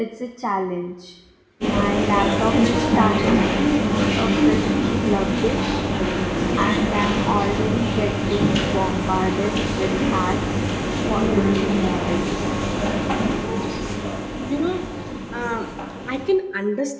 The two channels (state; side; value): identical; both; correlation 1.00